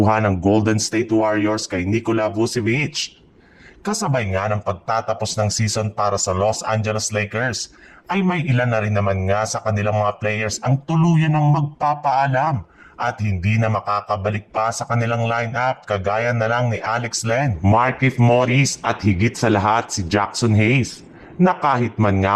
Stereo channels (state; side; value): identical; both; correlation 1.00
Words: ng Golden State Warriors kay Nikola Vucevic. Kasabay nga ng pagtatapos ng season para sa Los Angeles Lakers ay may ilan na rin naman nga sa kanilang mga players ang tuluyan ng magpapaalam at hindi na makakabalik pa sa kanilang lineup kagaya na lang ni Alex Len, Markieff Morris at higit sa lahat si Jackson Hayes na kahit man nga